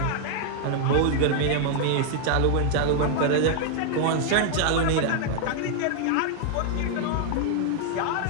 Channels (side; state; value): both; different; correlation 0.00